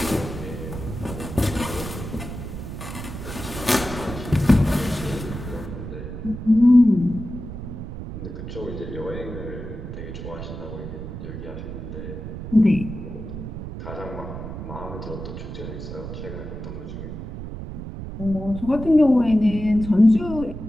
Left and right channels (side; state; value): right; noise; rumble, 8 dB below the sound